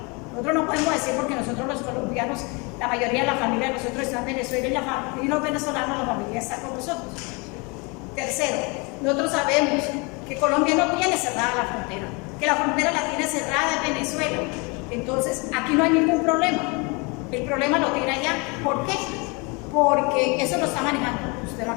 Nosotros no podemos decir porque nosotros los colombianos, la mayoría de la familia de nosotros está en Venezuela y los venezolanos, la familia está con nosotros. Tercero, nosotros sabemos que Colombia no tiene cerrada la frontera, que la frontera la tiene cerrada en Venezuela. Entonces, aquí no hay ningún problema. El problema lo tiene allá. ¿Por qué? Porque eso lo está manejando, usted lo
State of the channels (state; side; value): quieter; right; 29.6 dB